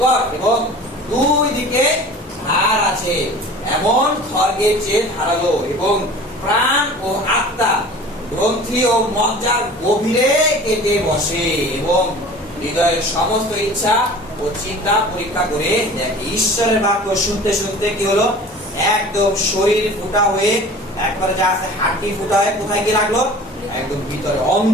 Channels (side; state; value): both; normal; correlation 0.42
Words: এবং দুই দিকে ধার আছে, এমন খড়গের চেয়ে ধারালো, এবং প্রাণ ও আত্মা, গ্রন্থি ও মজ্জার গভীরে কেটে বসে, এবং হৃদয়ের সমস্ত ইচ্ছা ও চিন্তা পরীক্ষা করে দেখে। ঈশ্বরের বাক্য শুনতে শুনতে কি হলো? একদম শরীর ফুটা হয়ে, একবারে যা আছে হাড়টি ফুটা হয়ে কোথায় গিয়ে লাগলো? একদম ভিতরে